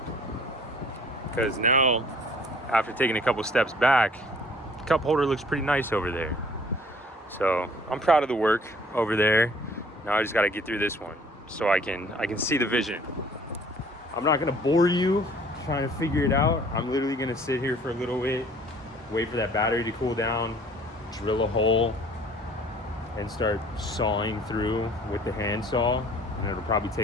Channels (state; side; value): normal; both; correlation 0.54